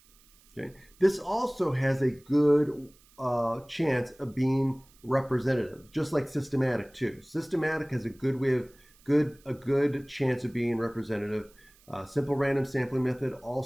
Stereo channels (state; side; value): noise; right; hiss, 29 dB below the sound